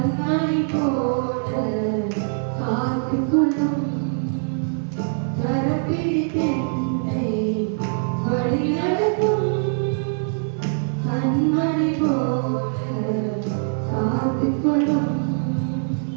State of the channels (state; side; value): silent; left; 64 dB below the other